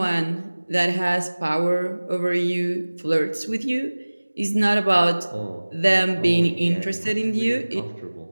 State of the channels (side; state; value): both; inverted; correlation -1.00